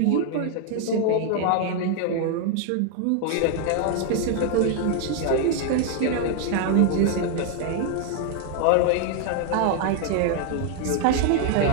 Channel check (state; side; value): different; both; correlation 0.00